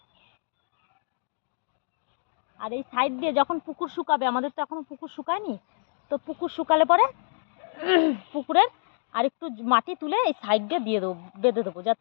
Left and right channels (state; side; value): silent; right; digital silence